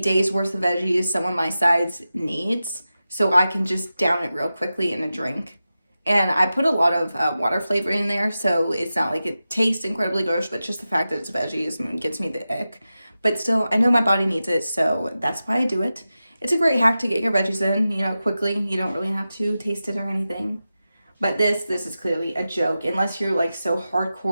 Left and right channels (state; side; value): inverted; both; correlation -0.93